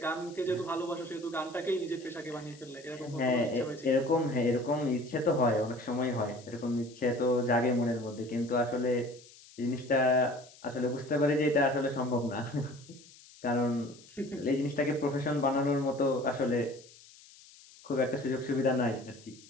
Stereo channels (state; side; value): noise; left; hiss, 22 dB below the sound